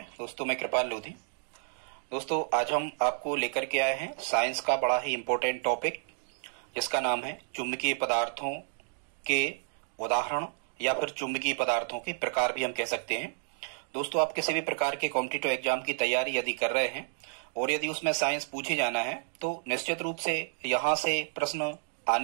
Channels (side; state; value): left; silent; digital silence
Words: दोस्तों मैं कृपाल लोधी। दोस्तों आज हम आपको लेकर के आए हैं साइंस का बड़ा ही इम्पोर्टेंट टॉपिक, जिसका नाम है चुंबकीय पदार्थों के उदाहरण या फिर चुंबकीय पदार्थों के प्रकार भी हम कह सकते हैं। दोस्तों आप किसी भी प्रकार के कॉम्पिटिटिव एग्जाम की तैयारी यदि कर रहे हैं और यदि उसमें साइंस पूछे जाना है तो निश्चित रूप से यहाँ से प्रश्न